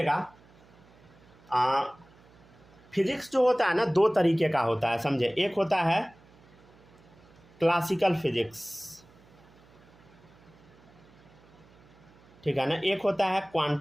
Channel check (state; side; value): noise; right; hum, 26 dB below the sound